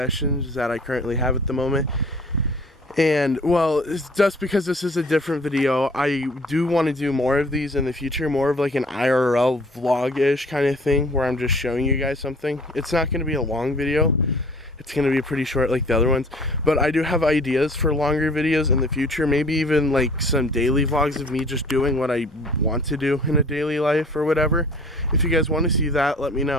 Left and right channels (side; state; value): both; normal; correlation 0.51